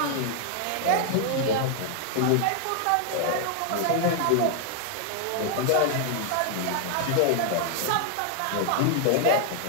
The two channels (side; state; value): both; different; correlation 0.00